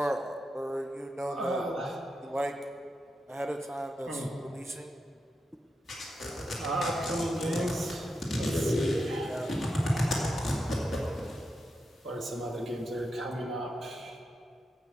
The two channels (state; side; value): normal; both; correlation 0.87